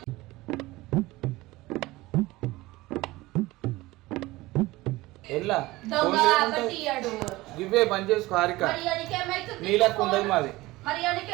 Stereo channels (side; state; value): left; quieter; 19.4 dB